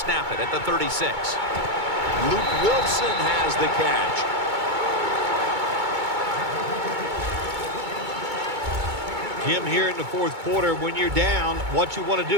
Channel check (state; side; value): late; left; 2.2 ms